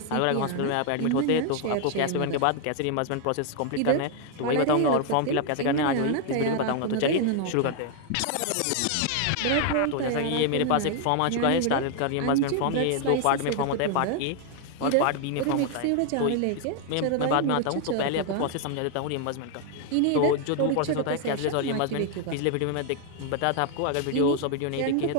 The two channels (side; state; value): both; different; correlation 0.00